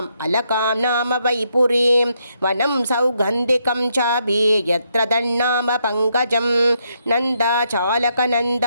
अलकां नाम वैपुरीं वनं सौगन्धिकं चापि यत्र तन्नाम पङ्कजं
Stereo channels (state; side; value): inverted; both; correlation -0.77